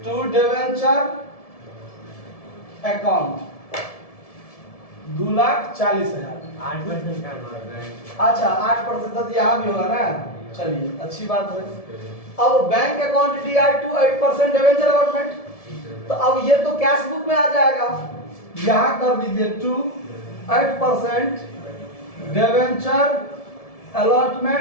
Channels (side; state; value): right; late; 1.7 ms